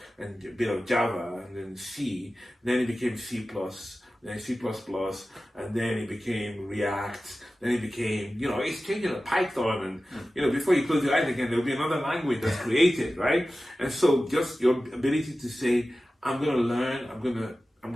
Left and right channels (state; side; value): normal; both; correlation 0.95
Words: bit of Java, and then C, then it became C++, then C++, and then it became React, then it became, it's changing to Python, and, before you close your eyes again, there'll be another language that's created, right? And so just your ability to say, I'm going to learn, I'm